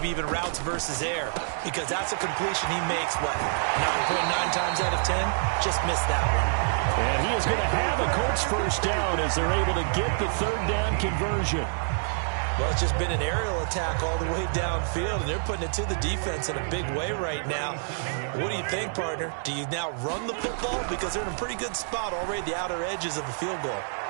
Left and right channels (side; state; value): left; silent; digital silence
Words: even routes versus air, because that's a completion he makes, what, 9.9 times out of 10? Just missed that one. And he is going to have a Colts first down as they're able to get the 3rd down conversion. Well, it's just been an aerial attack all the way downfield, and they're putting it to the defense in a big way right now. What do you think, partner? Do you now run the football? Because they're in a pretty good spot already at the outer edges of the field goal.